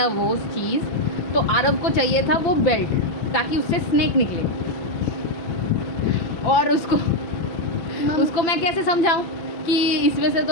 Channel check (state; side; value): late; right; 5.9 ms